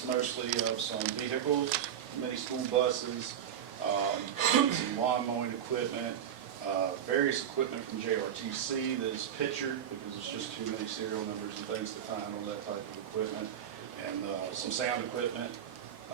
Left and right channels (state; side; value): quieter; left; 9.4 dB